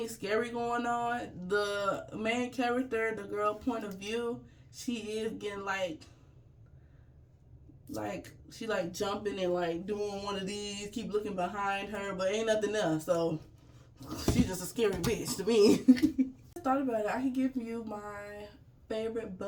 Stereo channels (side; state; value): both; identical; correlation 1.00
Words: scary going on. The main character, the girl point of view, she is getting like she like jumping and like doing one of these, keep looking behind her, but ain't nothing else. So she's just a scary bitch to me. I thought about it. I could give you my favorite